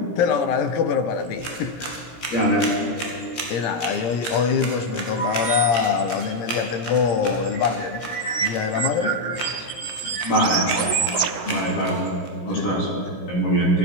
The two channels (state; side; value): late; right; 17 ms